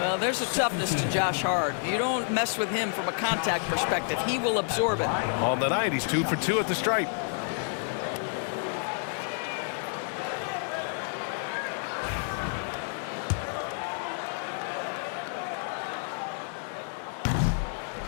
there's a toughness to Josh Hart. You don't mess with him from a contact perspective. He will absorb it. On the night, he's 2 for 2 at the stripe.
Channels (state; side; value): silent; right; 56 dB below the other